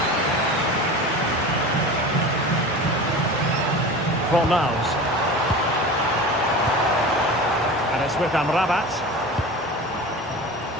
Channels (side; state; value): both; normal; correlation 0.33